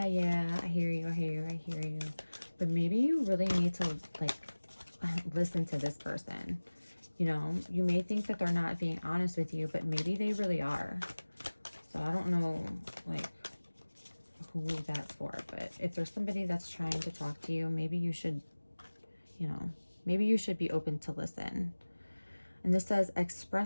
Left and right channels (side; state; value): both; inverted; correlation -1.00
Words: I hear you, but maybe you really need to like listen to this person. You know, you may think that they're not being honest with you, but maybe they really are. So I don't know like who that's for, but if there's somebody that's trying to talk to you, maybe you should, you know, maybe you should be open to listen. And this says,